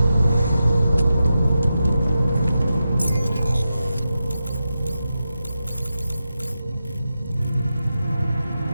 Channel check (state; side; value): inverted; both; correlation -0.90